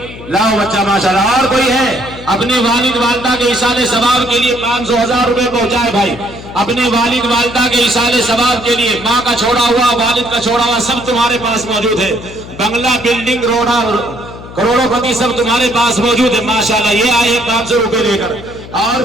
لاؤ بچہ ماشاءاللہ۔ اور کوئی ہے؟ اپنے والد والدہ کے ایصال ثواب کے لیے 500 1,000 روپے پہنچائے بھائی، اپنے والد والدہ کے ایصال ثواب کے لیے، ماں کا چھوڑا ہوا، والد کا چھوڑا ہوا سب تمہارے پاس موجود ہے، بنگلہ، بلڈنگ، روڈا، کروڑوں پتی سب تمہارے پاس موجود ہے ماشاءاللہ۔ یہ آئے ہیں 500 روپے لے کر۔ اور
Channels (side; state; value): left; noise; hum, 15 dB below the sound